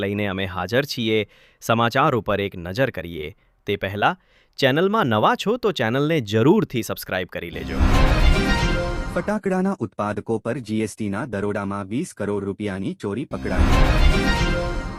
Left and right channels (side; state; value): both; identical; correlation 1.00